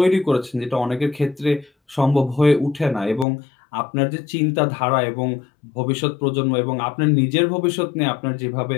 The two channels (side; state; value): right; drops out; at 3.2 s